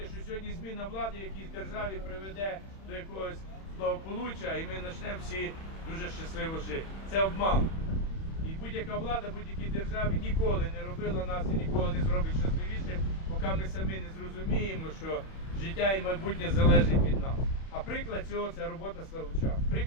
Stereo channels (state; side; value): late; right; 31 ms